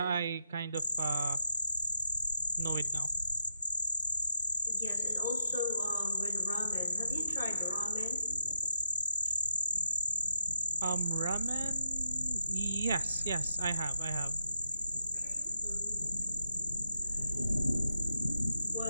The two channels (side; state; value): both; inverted; correlation -0.86